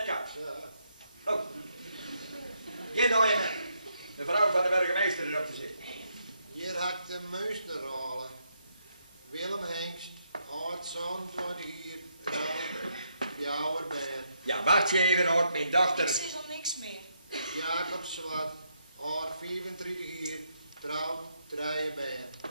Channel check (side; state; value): both; inverted; correlation -0.77